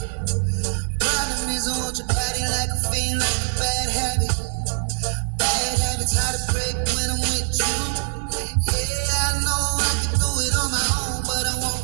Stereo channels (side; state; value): left; silent; 64 dB below the other